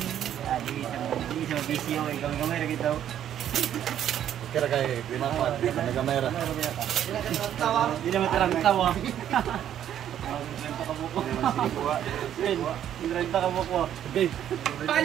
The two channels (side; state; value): left; quieter; 10.5 dB